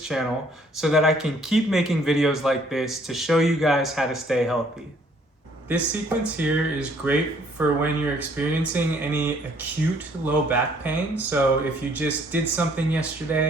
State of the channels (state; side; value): normal; both; correlation 0.62